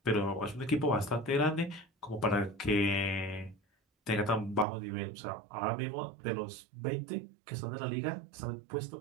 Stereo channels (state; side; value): drops out; left; at 4.7 s